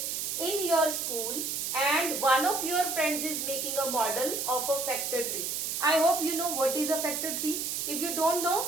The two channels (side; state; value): right; noise; hiss, 2 dB below the sound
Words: in your school and one of your friends is making a model of a factor tree. I hope you know what is a factor tree. If you don't know,